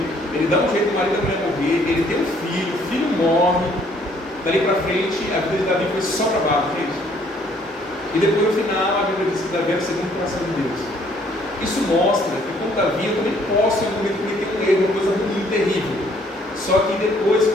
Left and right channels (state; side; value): normal; both; correlation 0.63